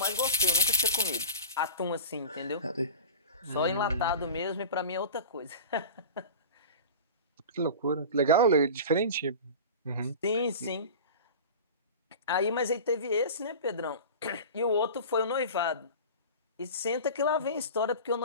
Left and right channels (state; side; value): inverted; both; correlation -0.33